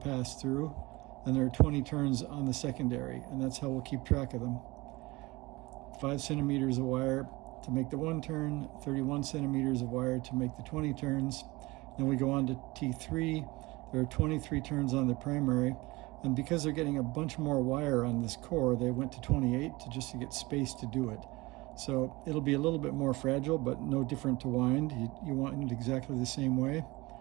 through, and there are 20 turns on the secondary, and that's how we'll keep track of them. 5 centimeters of wire to make the 1 turn, 31 centimeters of wire to make the 20 turns. Then we go on to T3. There are 23 turns on the primary, and because they're getting a bunch more wire on this core, they went to 28 just to get space to do it. So it'll be a little bit more fragile, but no different to wind. You wind it exactly the same way.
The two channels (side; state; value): left; quieter; 22.1 dB